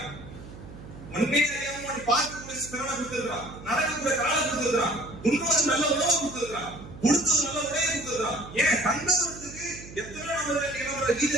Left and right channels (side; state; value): right; noise; hum, 15 dB below the sound